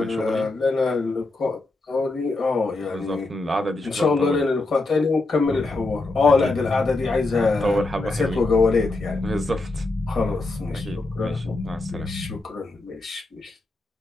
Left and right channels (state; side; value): quieter; right; 3.1 dB